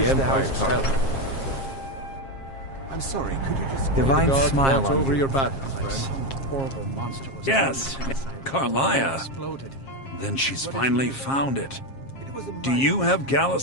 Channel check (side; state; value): right; late; 7.4 ms